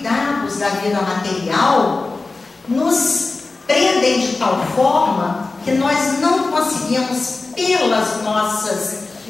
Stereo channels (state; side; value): quieter; right; 3.6 dB